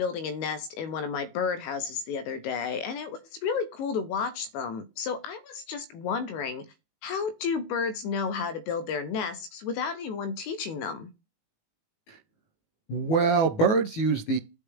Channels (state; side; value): late; right; 19 ms